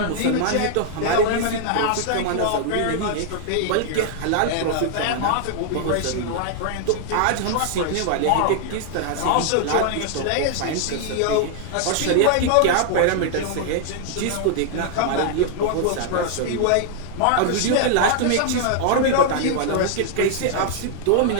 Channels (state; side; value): different; both; correlation -0.01